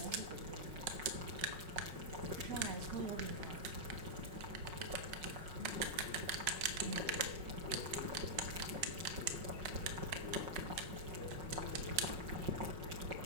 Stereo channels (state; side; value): late; left; 5.5 ms